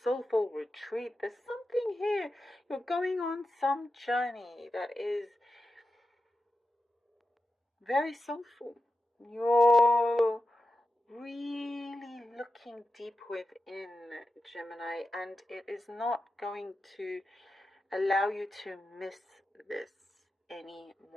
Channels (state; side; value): normal; both; correlation 0.90